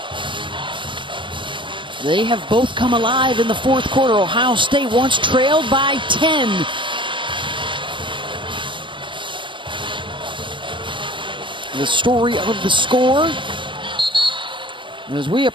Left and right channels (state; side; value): late; left; 0.24 ms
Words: They have both come alive in the fourth quarter. Ohio State once trailed by 10. The story of the score as we